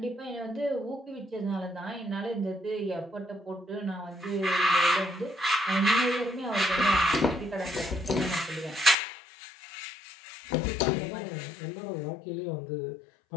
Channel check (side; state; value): right; drops out; at 9.0 s